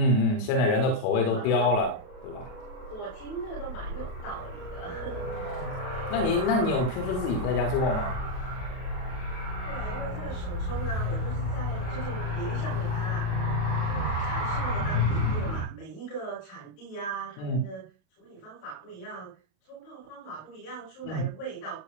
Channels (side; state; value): right; late; 38 ms